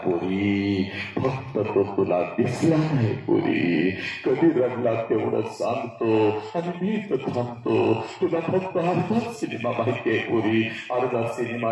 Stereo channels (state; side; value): identical; both; correlation 1.00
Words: पोरी. फक्त तो तुला दिसला नाही पोरी. कधी रडला तेवढं सांगतो आणि मी तर थांबतो. तुला फक्त अर्धा सिनेमा माहितीये पोरी, अर्धा सिनेमा